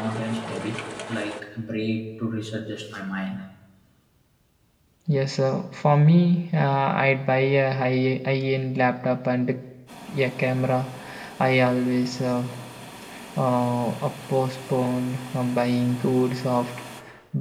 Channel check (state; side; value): identical; both; correlation 1.00